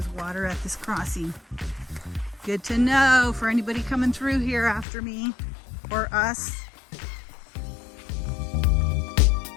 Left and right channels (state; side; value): drops out; right; at 4.9 s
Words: water at this crossing. Good to know for anybody coming through here after me or us.